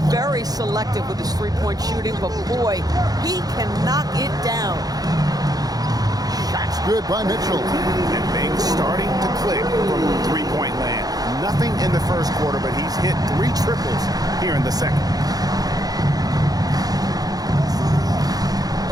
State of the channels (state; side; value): late; left; 0.18 ms